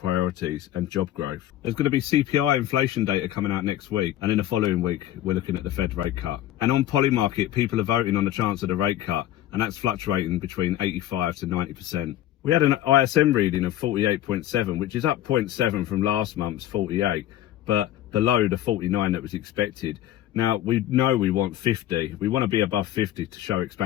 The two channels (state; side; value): quieter; right; 13.1 dB